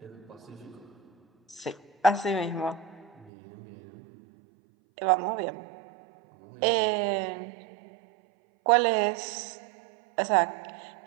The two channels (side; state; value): left; drops out; at 3.3 s